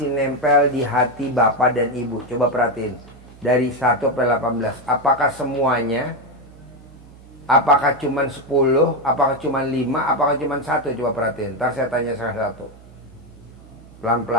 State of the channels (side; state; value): right; noise; hum, 22 dB below the sound